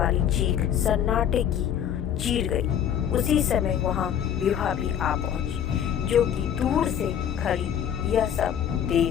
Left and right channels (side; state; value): right; quieter; 9.4 dB